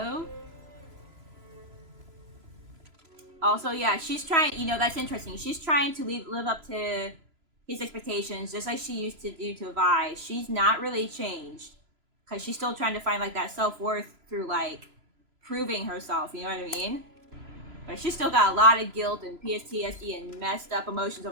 Also, yeah, she's trying, you know, that's interesting. She's trying to live up to his expectations just like she used to do to Vi. She's not really changed because she's still trying to find like that self-worth through like proving herself, you know what I mean? But she's still got a lot of guilt and PTSD and messed up emotions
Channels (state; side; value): late; left; 3.0 ms